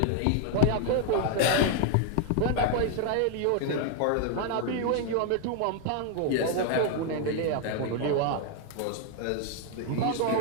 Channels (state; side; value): different; both; correlation 0.00